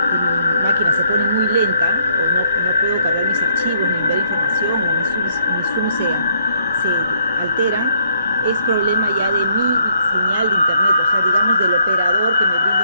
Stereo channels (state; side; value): inverted; both; correlation -0.69